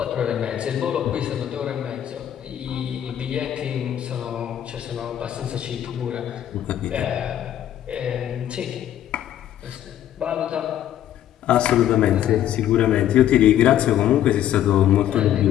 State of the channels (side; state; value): right; quieter; 11.3 dB